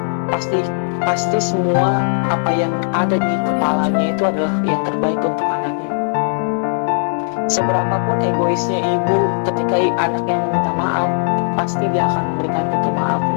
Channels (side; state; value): right; silent; digital silence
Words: Pasti semua apa yang ada di kepalanya itu adalah yang terbaik untuk anaknya. Seberapapun egoisnya ibu, ketika anaknya meminta maaf, pasti dia akan memberikan itu